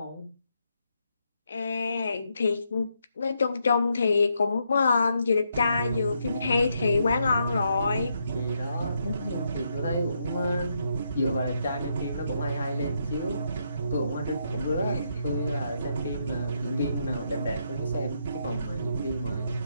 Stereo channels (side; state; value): both; inverted; correlation -0.78